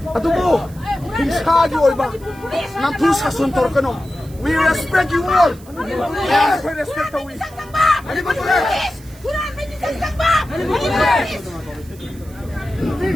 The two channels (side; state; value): right; noise; hiss, 24 dB below the sound